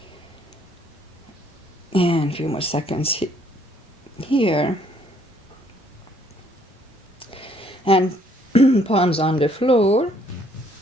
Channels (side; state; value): both; normal; correlation 0.65